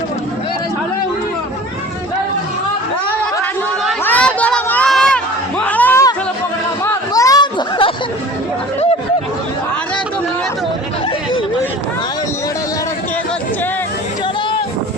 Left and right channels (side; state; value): both; normal; correlation 0.42